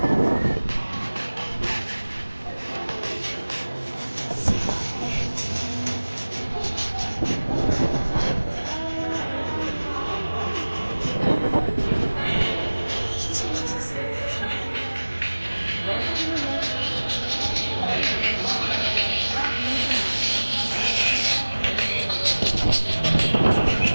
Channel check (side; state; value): both; inverted; correlation -1.00